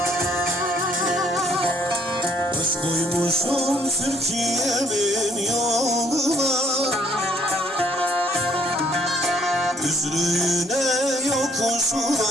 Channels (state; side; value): normal; both; correlation 0.64